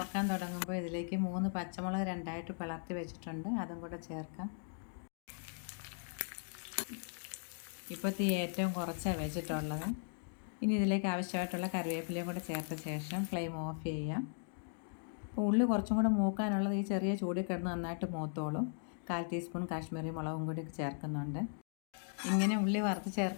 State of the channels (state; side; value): silent; right; digital silence